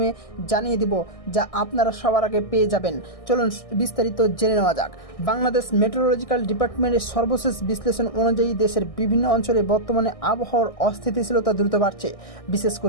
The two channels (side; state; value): right; late; 1.6 ms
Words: জানিয়ে দিব, যা আপনারা সবার আগে পেয়ে যাবেন। চলুন বিস্তারিত জেনে নেওয়া যাক। বাংলাদেশ মেট্রোলজিক্যাল ডিপার্টমেন্টের সর্বশেষ বিশ্লেষণ অনুযায়ী দেশের বিভিন্ন অঞ্চলে বর্তমানে আবহাওয়ার অস্থিতিশীলতা দ্রুত বাড়ছে। বিশেষ